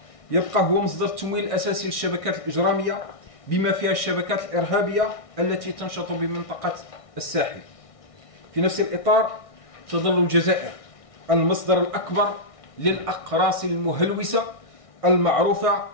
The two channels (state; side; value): late; right; 1.6 ms